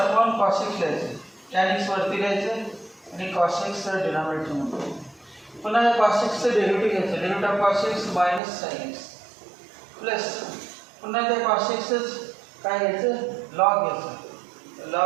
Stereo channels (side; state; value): left; drops out; at 8.4 s